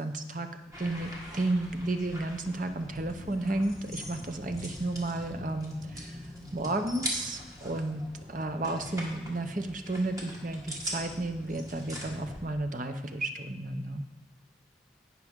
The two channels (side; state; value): both; normal; correlation 0.70